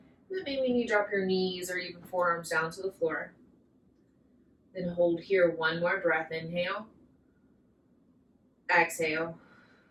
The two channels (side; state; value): both; identical; correlation 1.00